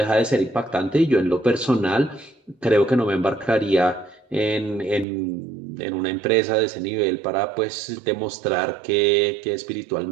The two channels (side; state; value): left; drops out; at 5.1 s